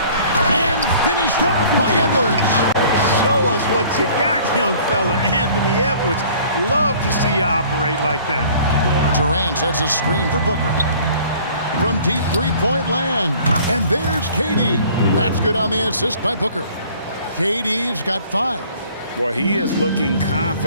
And finished off by Edwards. Show us what you got, young fella. Anthony Edwards. Love to see you operate like that. Durant sets a screen for Booker. From deep three-point land. And there's KD. That's good on the assist by Booker. KD's got 5. Boy, he is looking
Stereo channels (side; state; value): both; inverted; correlation -0.52